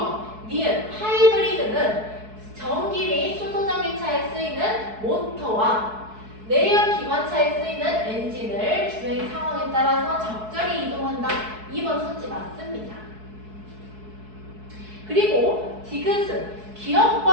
니은 하이브리드는 전기 및 수소전기차에 쓰이는 모터와 내연 기관차에 쓰이는 엔진을 주행 상황에 따라서 적절히 이동한다. 2번 선지 맞습니다. 그리고 디귿은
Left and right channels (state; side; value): late; left; 4.6 ms